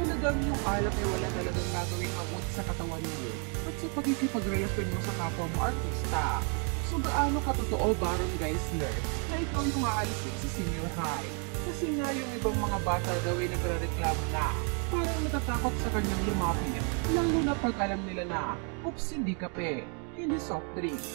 Talagang yung alak ay wala talagang gagawing mabuti sa katawan mo at sa pagkikipagrelasyon mo sa kapwa mo artista. So gaano katotoo Baron Geisler na ikaw yung aalisin sa Senior High? Kasi nga yung ibang mga bata daw ay nagre-reklamo na parang natatakot sa kanyang lumapit, lalo na pag alam nila na oops, hindi kape, hindi soft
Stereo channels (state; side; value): quieter; left; 39.0 dB